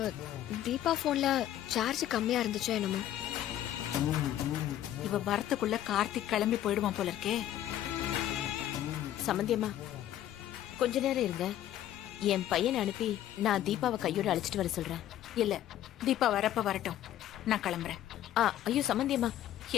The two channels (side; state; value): right; quieter; 12.3 dB